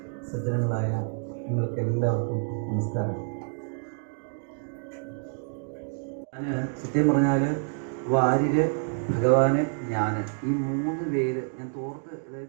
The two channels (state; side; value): silent; left; 59 dB below the other